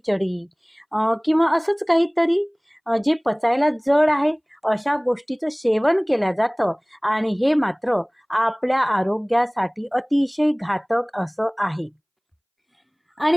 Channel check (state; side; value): identical; both; correlation 1.00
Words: किंवा असंच काहीतरी जे पचायला जड आहे अशा गोष्टीचं सेवन केलं जातं आणि हे मात्र आपल्या आरोग्यासाठी अतिशय घातक असं आहे.